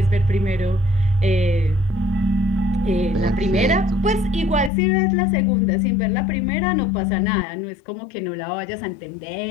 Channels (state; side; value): drops out; right; at 4.7 s